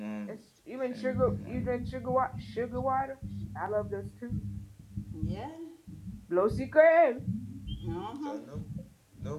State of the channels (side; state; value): both; identical; correlation 1.00